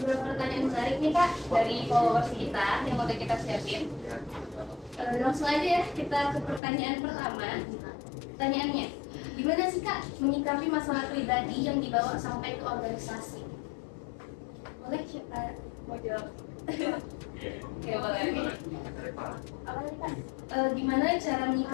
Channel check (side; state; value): right; drops out; at 6.6 s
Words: pertanyaan menarik nih Kak dari followers kita yang udah kita siapin. Langsung aja ya kita ke pertanyaan pertama. Pertanyaannya, gimana sih Kak menyikapi masalah pribadi yang dibawa sampai ke organisasi? Boleh siapa mau jawab? Oke, boleh. Dari Pak. Apa tadi Kak? Gimana cara